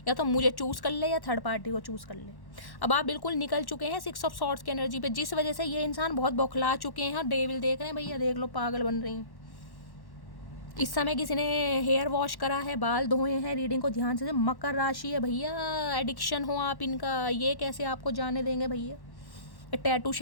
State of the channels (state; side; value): late; right; 1.1 ms